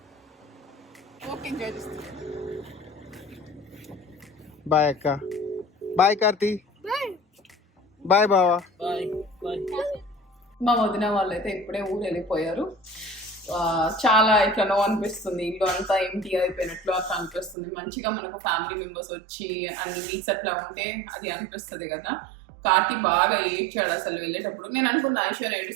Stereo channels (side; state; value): left; drops out; at 17.6 s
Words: బాయ్ అక్క, బాయ్ కార్తీ, బాయ్ బావా. మా వదిన వాళ్ళు అయితే ఇప్పుడే ఊరు వెళ్ళిపోయారు. చాలా ఇట్లా అనిపిస్తుంది, ఇల్లు అంతా ఎంటీ అయిపోయినట్లు అట్లా అనిపిస్తుంది. మంచిగా మనకు ఫ్యామిలీ మెంబర్స్ వచ్చి అన్ని వీక్స్ అట్లా ఉంటే అది అనిపిస్తుంది కదా. కార్తీ బాగా ఏడ్చాడు అసలు వెళ్ళేటప్పుడు. నేను అనుకున్న ఐశ్వర్య